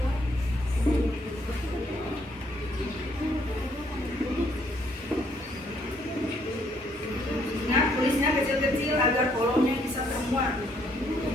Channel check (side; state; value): both; normal; correlation 0.68